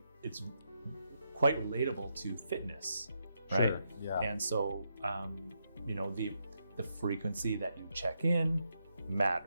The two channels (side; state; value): both; inverted; correlation -0.82